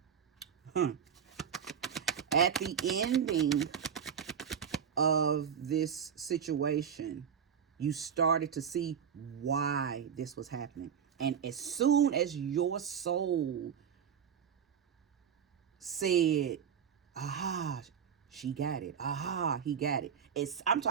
At the ending of this situation, you started to see why this was happening. And as soon as your soul said, aha, she got it, aha, he got it, I'm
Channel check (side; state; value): left; quieter; 7.7 dB